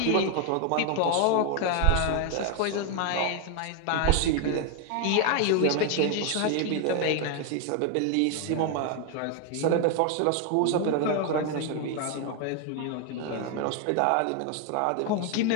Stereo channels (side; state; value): both; different; correlation 0.00